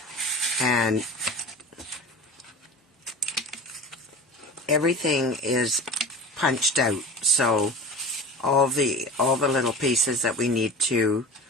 And everything is punched out. So all the little pieces that we need to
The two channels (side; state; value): both; normal; correlation 0.34